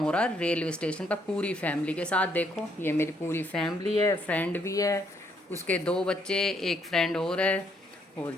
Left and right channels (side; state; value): both; normal; correlation 0.71